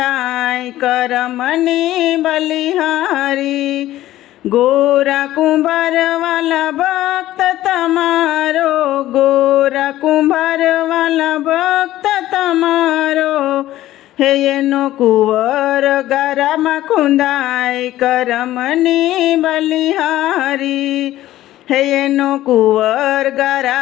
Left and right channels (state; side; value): quieter; right; 14.6 dB